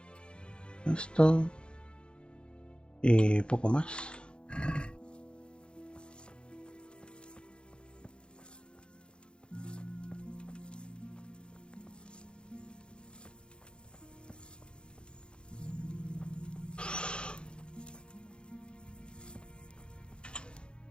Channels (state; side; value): late; right; 0.053 ms